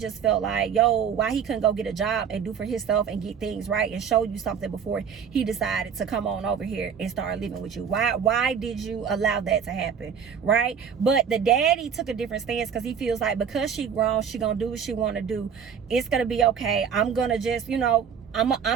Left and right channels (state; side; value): quieter; left; 7.3 dB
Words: felt like, yo, why he couldn't go get a job and do for himself and get things right and show you something before he decided to come on over here and start living with you. Why did you allow that to happen, right? But the daddy took a different stance because he feels like because she grown, she gonna do what she want to do. It's gonna be okay. I'm gonna just, you know,